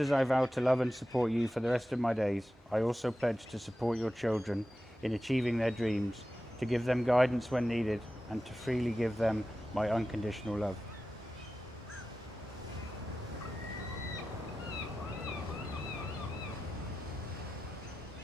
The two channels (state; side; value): normal; both; correlation 0.93